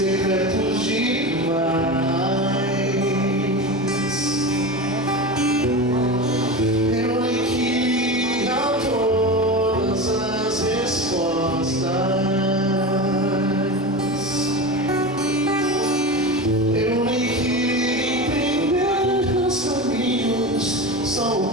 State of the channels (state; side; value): normal; both; correlation 0.25